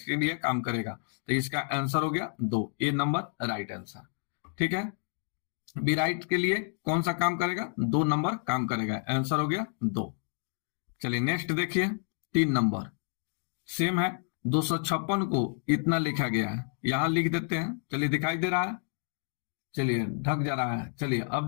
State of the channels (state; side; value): silent; right; 58 dB below the other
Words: के लिए काम करेगा। तो इसका आंसर हो गया 2, ए नंबर राइट आंसर। ठीक है, बी राइट के लिए कौन सा काम करेगा, 2 नंबर काम करेगा, आंसर हो गया 2। चलिए नेक्स्ट देखिए 3 नंबर सेम है। 256 को इतना लिखा गया है, यहां लिख देते हैं। चलिए दिखाई दे रहा है, चलिए ढक जा रहा है, चलिए अब